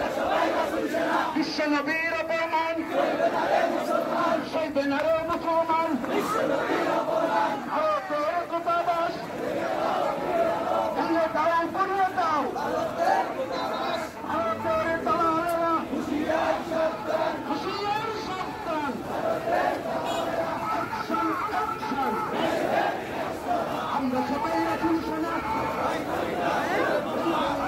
বিশ্ব নবীর অপমান সইবে না রে মুসলমান, ভারতের দূতাবাস ভেঙে দাও পুড়িয়ে দাও। ভারতের দালালেরা হুঁশিয়ার সাবধান। আমরা সবাই রাসূল সেনা।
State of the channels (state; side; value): identical; both; correlation 1.00